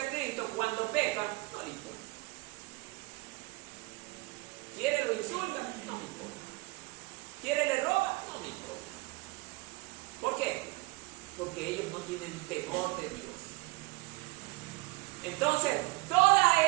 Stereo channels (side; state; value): left; quieter; 22.9 dB